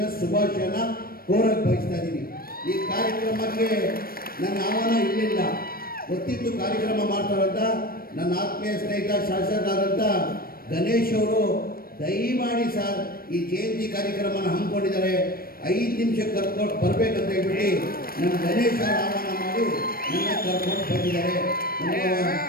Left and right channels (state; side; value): late; right; 0.43 ms